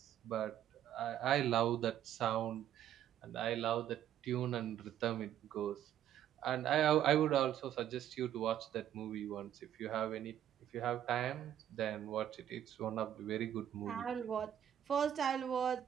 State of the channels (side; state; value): left; quieter; 10.8 dB